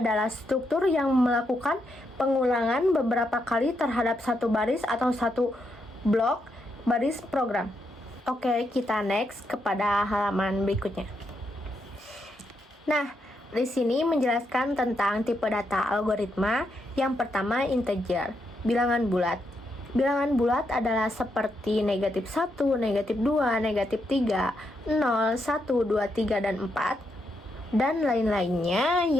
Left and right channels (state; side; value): normal; both; correlation 0.81